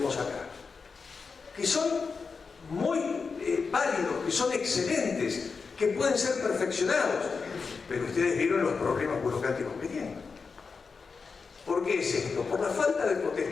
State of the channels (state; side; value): quieter; right; 5.0 dB